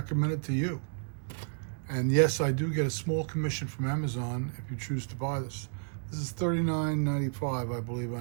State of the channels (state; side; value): silent; left; digital silence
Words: it to you. And yes, I do get a small commission from Amazon if you choose to buy this. This is $39.95, I believe,